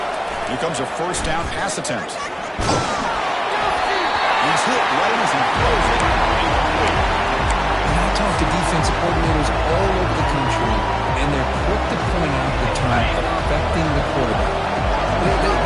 Here comes a first down pass attempt. He's hit right as he throws it. And I talk to defensive coordinators all over the country, and they're quick to point out the term affecting the quarterback.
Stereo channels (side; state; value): both; identical; correlation 1.00